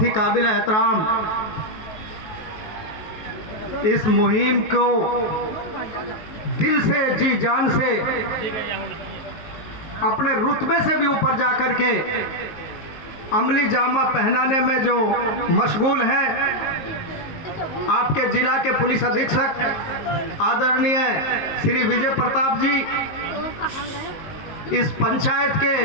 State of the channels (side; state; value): right; late; 19 ms